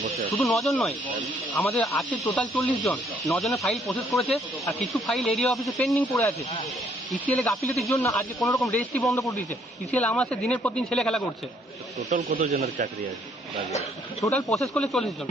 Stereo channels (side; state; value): both; normal; correlation 0.66